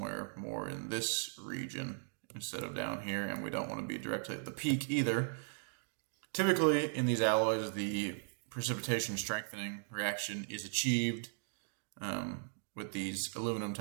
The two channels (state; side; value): silent; left; digital silence